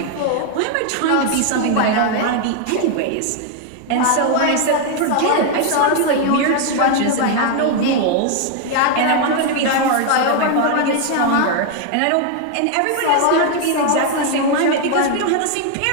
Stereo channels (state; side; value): different; both; correlation 0.00